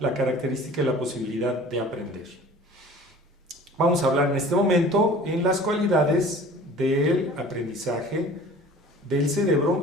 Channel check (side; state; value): both; normal; correlation 0.45